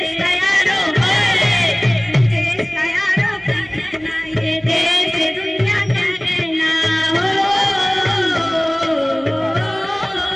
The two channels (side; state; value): right; noise; hum, 25 dB below the sound